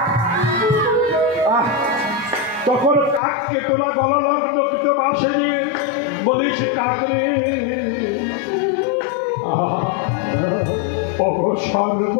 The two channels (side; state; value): right; drops out; at 3.2 s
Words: তখন কাককে তোরা গলা লগ্ন কিন্তু বাসে নিয়ে বলিস কাক রে,